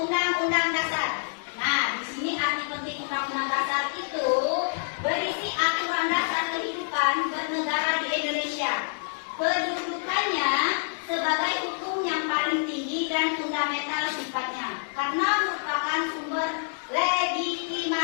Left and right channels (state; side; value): silent; right; digital silence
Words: Dasar. Nah, di sini arti penting Undang-Undang Dasar itu berisi aturan dasar kehidupan bernegara di Indonesia. Kedudukannya sebagai hukum yang paling tinggi dan fundamental sifatnya, karena merupakan sumber